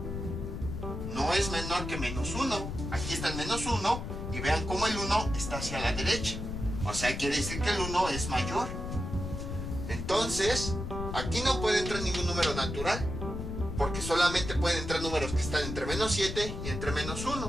no es menor que menos 1. Aquí está el menos 1. Y vean cómo el 1 está hacia la derecha. O sea, quiere decir que el 1 es mayor. Entonces, aquí no puede entrar ningún número natural, porque solamente pueden entrar números que están entre menos 7 y entre menos 1.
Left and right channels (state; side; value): noise; left; rumble, 6 dB below the sound